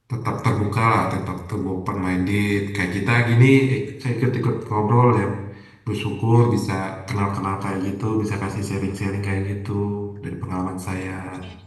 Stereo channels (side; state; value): both; identical; correlation 1.00